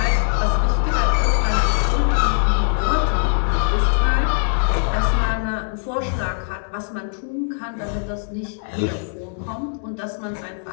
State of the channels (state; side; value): silent; right; digital silence